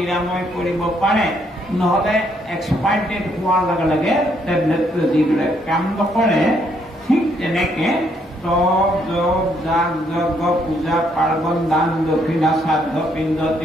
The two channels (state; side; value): normal; both; correlation 0.71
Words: কৰিব পাৰে, নহলে এক্সপায়াৰ ডেট হোৱাৰ লগে লগে টেবলেটটো যিবিলাক কাম নকৰে। ঠিক তেনেকে তপ, জপ, যাগ যজ্ঞ, পূজা পাৰ্বণ, দান দক্ষিণা, শ্ৰাদ্ধ, পিণ্ড,